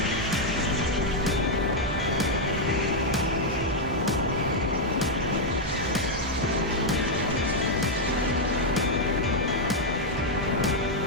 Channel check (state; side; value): normal; both; correlation -0.02